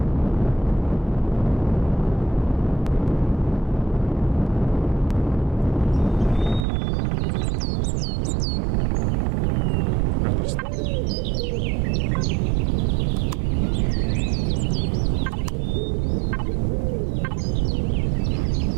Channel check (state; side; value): drops out; left; at 6.7 s